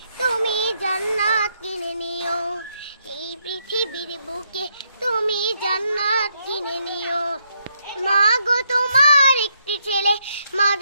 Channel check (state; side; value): inverted; both; correlation -0.77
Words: তুমি জান্নাত কিনে নিও, এই পৃথিবীর বুকে তুমি জান্নাত কিনে নিও। মা গো তোমার একটি ছেলে